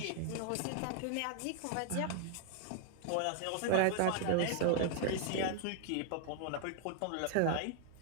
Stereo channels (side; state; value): both; different; correlation 0.00